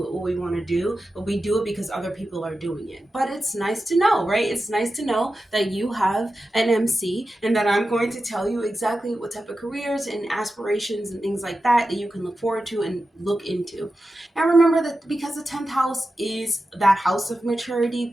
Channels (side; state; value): both; normal; correlation 0.92